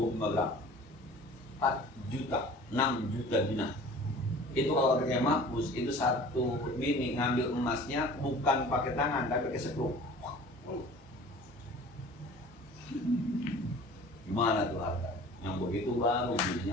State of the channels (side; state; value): both; normal; correlation 0.44